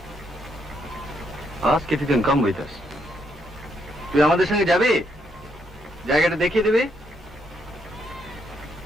Ask if you can come with us. তুই আমাদের সঙ্গে যাবি, জায়গাটা দেখিয়ে দিবি।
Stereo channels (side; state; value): both; normal; correlation 0.75